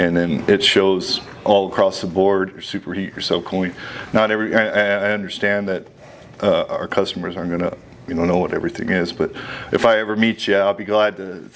then it shows all across the board, your superheat, your subcooling. I understand that our customers aren't going to know what everything is, but if I ever meet you, I'll be glad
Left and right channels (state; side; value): identical; both; correlation 1.00